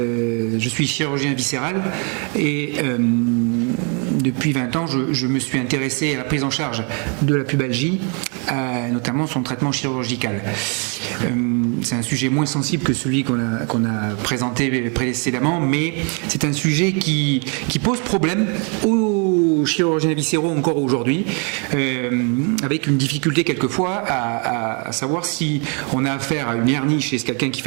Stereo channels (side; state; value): left; quieter; 36.8 dB